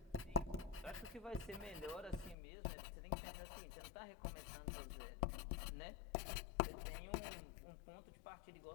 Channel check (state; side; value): drops out; right; at 2.4 s